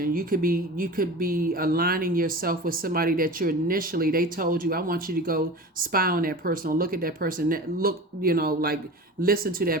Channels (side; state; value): both; normal; correlation 0.34